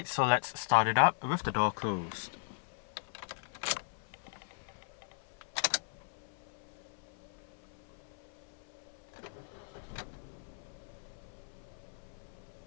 so let's start it up with the door closed.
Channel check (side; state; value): right; silent; 52 dB below the other